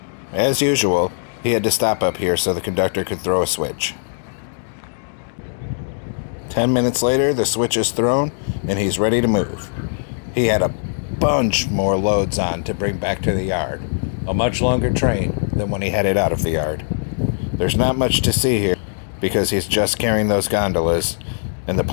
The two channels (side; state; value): right; silent; digital silence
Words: As usual, he had to stop up here so the conductor could throw a switch. 10 minutes later, the switch is thrown, and he's ready to move. He had a bunch more loads on to bring back to the yard, a much longer train than when he headed out of the yard. There's not much to see here because he's just carrying those gondolas, and the